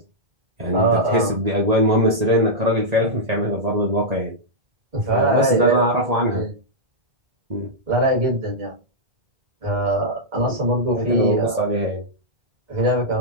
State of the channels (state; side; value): late; left; 1.9 ms